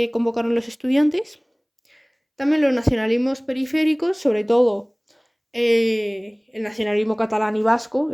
convocaron los estudiantes. También los nacionalismos periféricos, sobre todo el nacionalismo catalán y vasco,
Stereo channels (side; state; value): both; identical; correlation 1.00